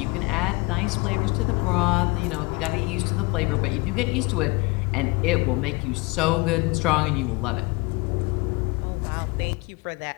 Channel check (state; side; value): quieter; right; 25.0 dB